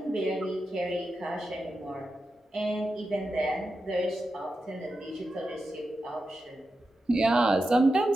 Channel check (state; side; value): normal; both; correlation 0.90